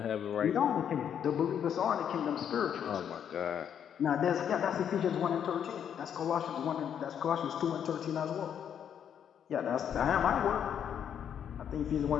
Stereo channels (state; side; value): quieter; right; 8.7 dB